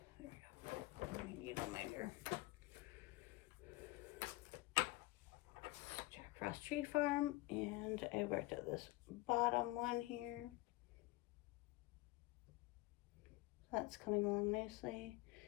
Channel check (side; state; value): right; quieter; 20.3 dB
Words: There we go. I need a minder. Jack Frost Tree Farm, and I worked at this bottom one here. That's coming along nicely.